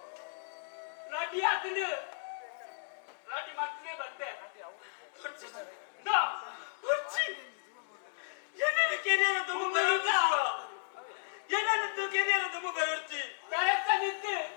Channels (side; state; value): right; silent; digital silence